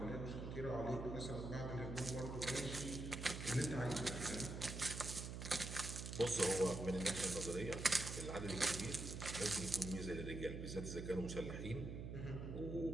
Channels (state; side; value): noise; right; hum, 6 dB below the sound